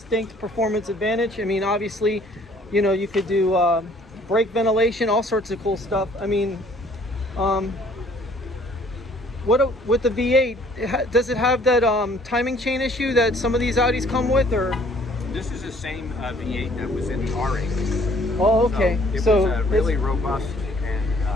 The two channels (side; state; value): both; normal; correlation 0.58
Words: performance advantage. I mean, obviously, you know, you could do brake ventilation, all sorts of cool stuff. I mean, with the V8, does it have that timing chain issue that some of these Audis come with, or? This is the same V8 that was in the R8. Oh, okay. So it was really robust and